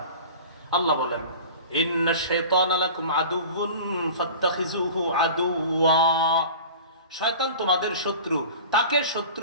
আল্লাহ বলেন, ইন্নাশ শাইতানা লাকুম আদুউন ফাত্তাখিযুহু আদুওয়া, শয়তান তোমাদের শত্রু, তাকে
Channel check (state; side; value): inverted; both; correlation -0.38